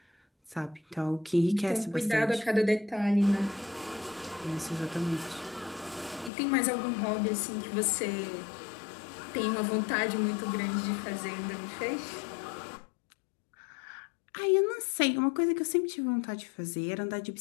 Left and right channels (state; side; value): drops out; right; at 6.3 s